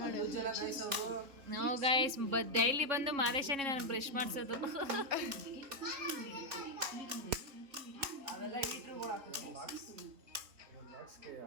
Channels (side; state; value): left; late; 3.6 ms